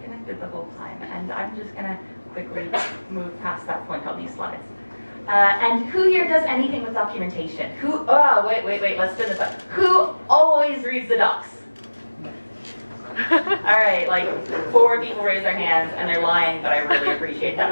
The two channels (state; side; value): inverted; both; correlation -1.00